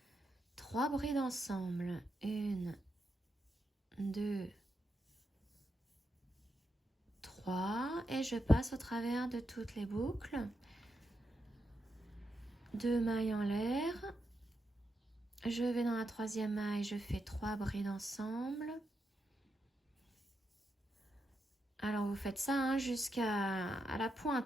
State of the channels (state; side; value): normal; both; correlation 0.84